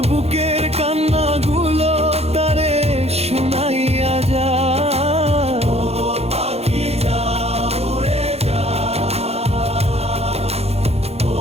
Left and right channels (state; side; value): late; left; 0.30 ms